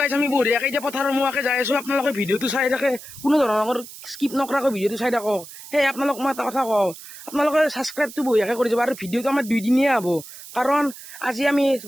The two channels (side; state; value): right; noise; hiss, 15 dB below the sound